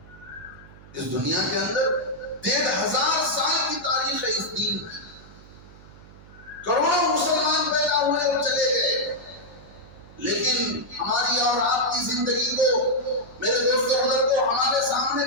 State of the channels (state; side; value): noise; right; hum, 21 dB below the sound